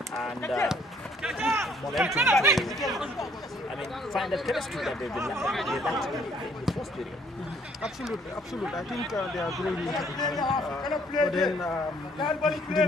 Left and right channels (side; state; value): both; normal; correlation 0.63